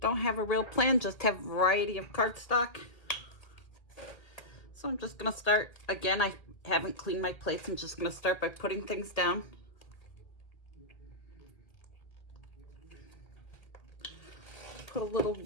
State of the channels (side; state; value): right; late; 1.6 ms